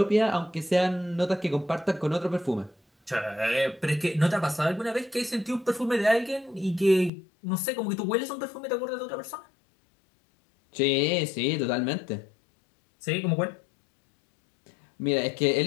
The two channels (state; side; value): drops out; right; at 7.1 s